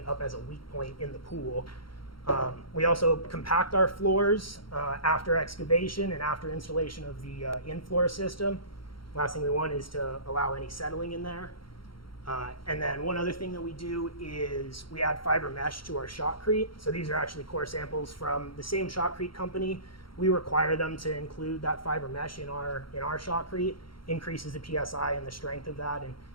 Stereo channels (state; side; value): late; right; 0.73 ms